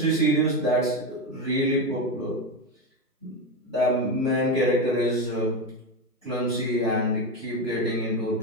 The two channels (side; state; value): both; normal; correlation 0.15